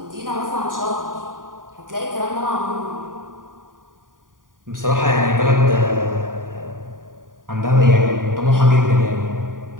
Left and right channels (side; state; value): left; late; 0.89 ms